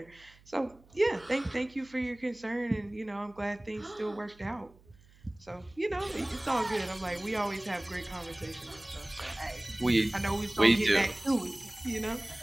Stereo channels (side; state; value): right; noise; hum, 27 dB below the sound